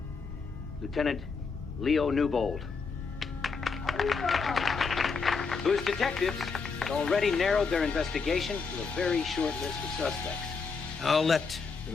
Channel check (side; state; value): right; quieter; 4.9 dB